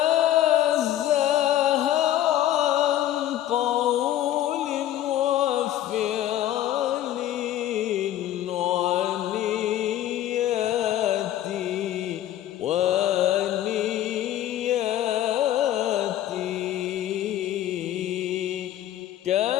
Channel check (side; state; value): right; quieter; 12.6 dB